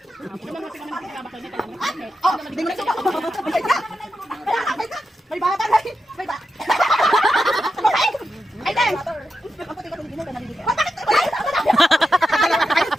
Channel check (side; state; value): both; normal; correlation 0.88